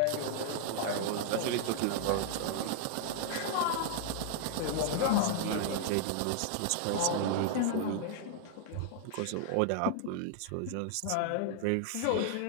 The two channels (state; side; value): different; both; correlation -0.01